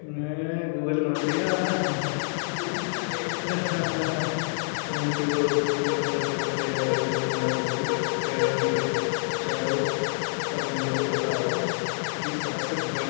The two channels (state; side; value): silent; right; 60 dB below the other